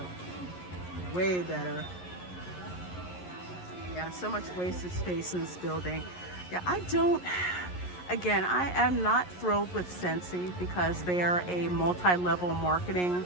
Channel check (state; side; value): late; right; 11 ms